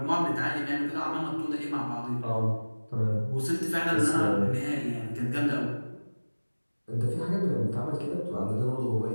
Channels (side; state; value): both; inverted; correlation -1.00